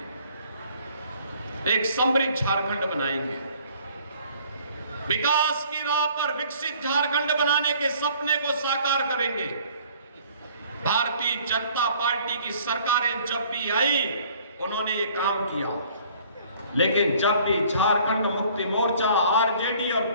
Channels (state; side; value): inverted; both; correlation -0.56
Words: एक समृद्ध झारखंड बनाएंगे, विकास की राह पर विकसित झारखंड बनाने के सपने को साकार करेंगे। भारतीय जनता पार्टी की सरकारें जब भी आई उन्होंने ये काम किया, लेकिन जब भी झारखंड मुक्ति मोर्चा, आरजेडी और